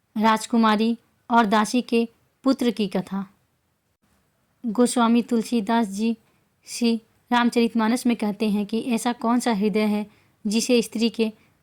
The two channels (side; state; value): both; identical; correlation 1.00